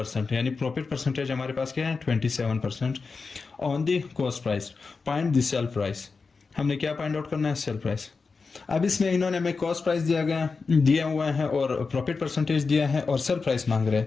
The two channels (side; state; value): right; quieter; 4.6 dB